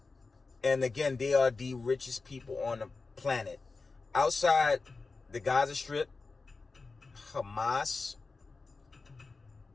And again, they are the richest people on the planet. Outside the Gaza Strip, Hamas,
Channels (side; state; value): right; quieter; 4.0 dB